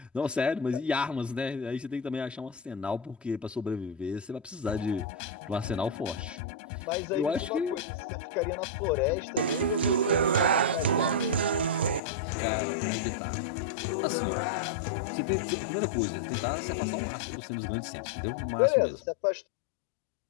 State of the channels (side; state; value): right; drops out; at 12.0 s